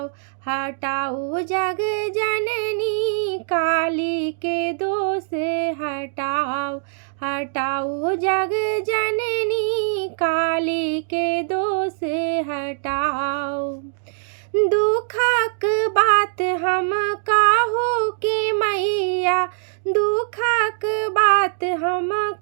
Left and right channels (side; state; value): left; silent; digital silence